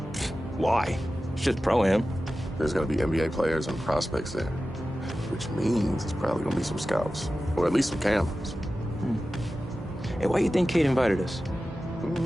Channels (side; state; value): both; normal; correlation 0.94